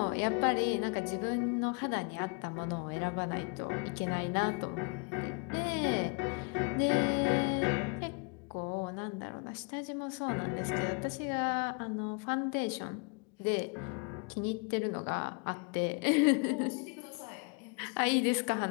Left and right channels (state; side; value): quieter; right; 33.4 dB